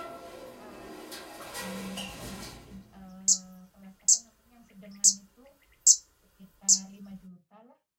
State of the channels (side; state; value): both; identical; correlation 1.00